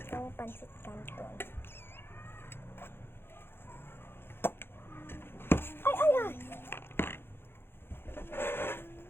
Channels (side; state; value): right; late; 0.11 ms